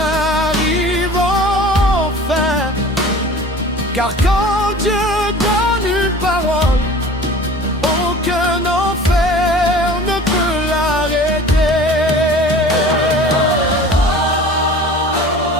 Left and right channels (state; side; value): normal; both; correlation 0.42